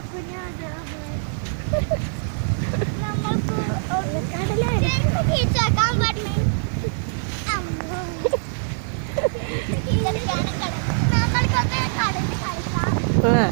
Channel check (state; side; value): silent; left; digital silence